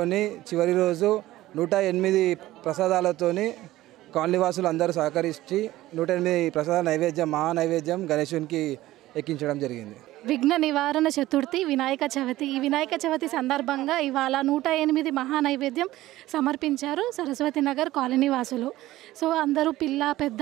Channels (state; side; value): quieter; left; 16.0 dB